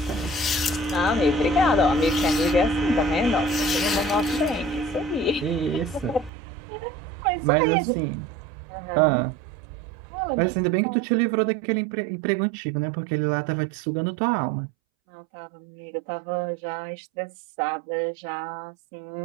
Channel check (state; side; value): drops out; left; at 6.3 s